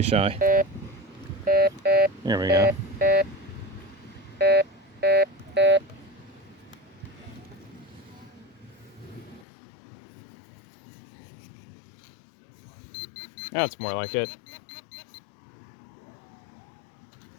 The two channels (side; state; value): right; drops out; at 9.5 s